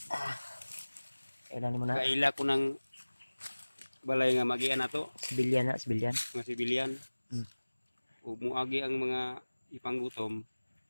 Kailan mo na? Kaila ko ng balay nga magian na to. Sibilyan na, sibilyan. Mga sibilyan. Hmm. Ug muagi ang mga ipanggutom.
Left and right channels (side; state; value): both; inverted; correlation -1.00